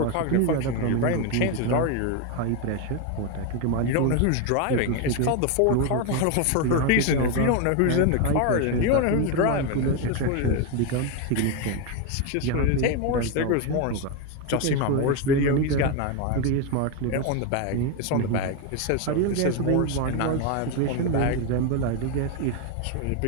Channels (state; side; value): different; both; correlation 0.02